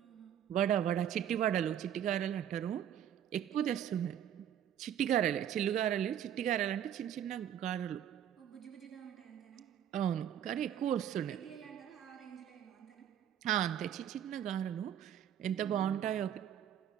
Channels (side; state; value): left; quieter; 10.0 dB